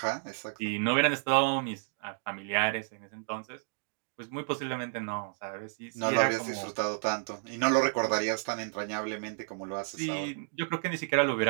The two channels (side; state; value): left; silent; digital silence